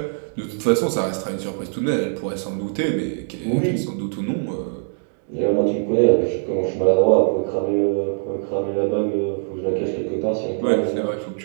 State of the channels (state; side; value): silent; left; digital silence